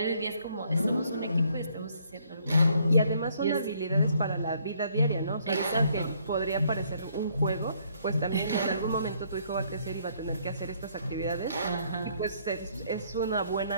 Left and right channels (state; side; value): inverted; both; correlation -0.66